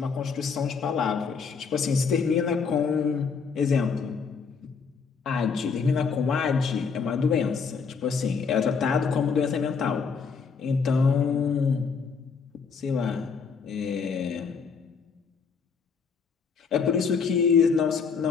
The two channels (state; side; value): quieter; right; 5.6 dB